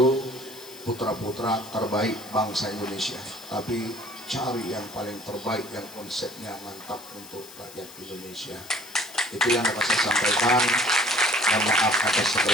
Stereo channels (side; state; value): left; noise; hiss, 17 dB below the sound